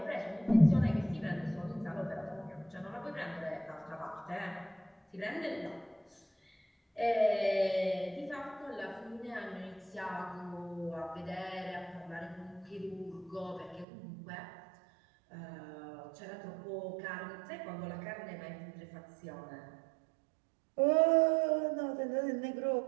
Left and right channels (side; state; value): left; drops out; at 13.9 s